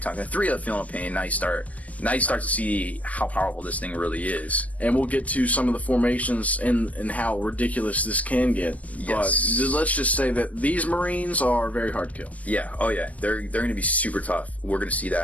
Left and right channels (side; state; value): right; late; 0.068 ms